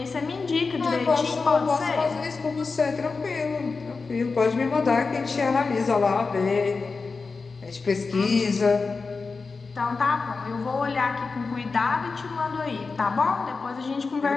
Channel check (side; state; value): right; quieter; 4.4 dB